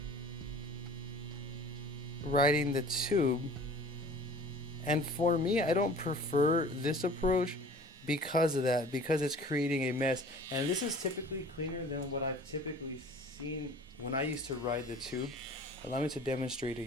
riding the tube. And for me, I don't prefer this approach because of that, because it's creating a mess. And this is typically cleaner than what I've typically seen when I used to ride the tube. Allow me to demonstrate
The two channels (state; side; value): normal; both; correlation 0.45